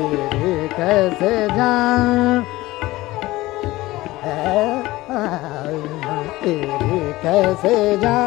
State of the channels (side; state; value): right; quieter; 18.5 dB